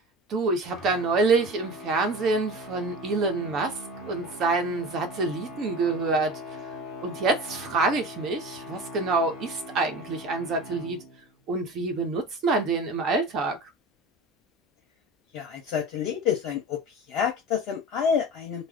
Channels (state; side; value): normal; both; correlation 0.34